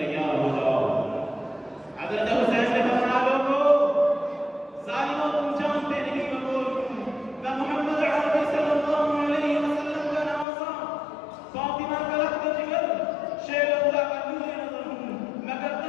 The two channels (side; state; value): right; drops out; at 10.5 s